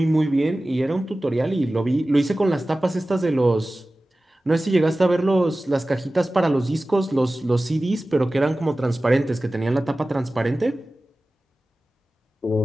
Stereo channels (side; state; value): both; normal; correlation 0.96